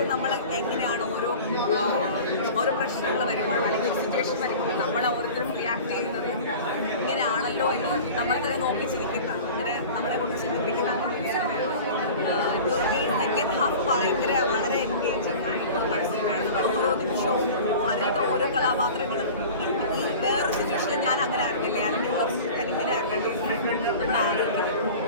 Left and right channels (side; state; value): both; inverted; correlation -0.38